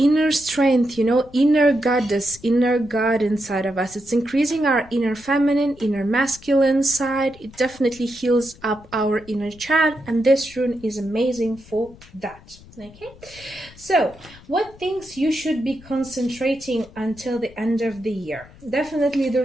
strength, you know, inner goddess, inner god inside of us. It's increasing our inner feminine, inner masculine side. It definitely heals up our inner child, and this rune is amazing for that. Okay, so what things you should be concentrating until the end of the year? Definitely the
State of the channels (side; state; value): left; noise; rumble, 22 dB below the sound